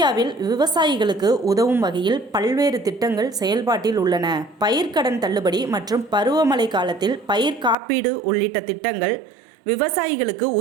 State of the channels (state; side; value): drops out; left; at 7.8 s